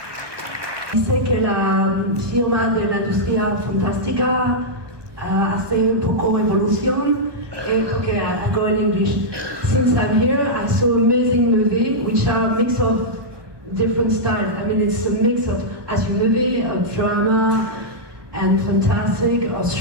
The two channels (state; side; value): late; left; 1.2 ms